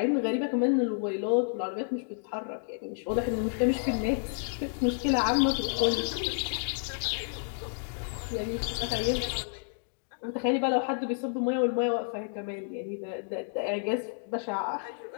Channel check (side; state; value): right; silent; digital silence